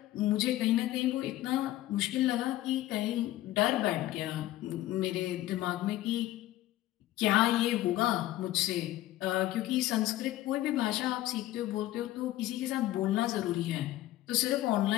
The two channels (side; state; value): right; quieter; 15.2 dB